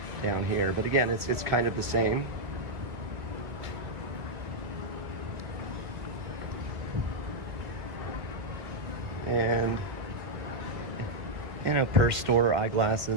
down here. But again, it's kind of the same. And per store,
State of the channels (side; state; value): left; late; 1.7 ms